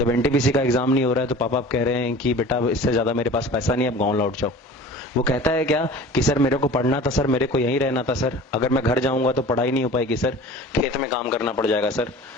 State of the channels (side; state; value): both; normal; correlation 0.41